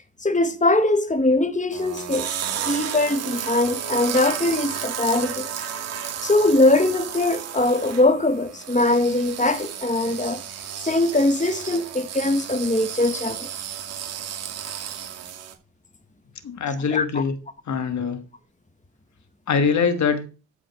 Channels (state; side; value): normal; both; correlation 0.34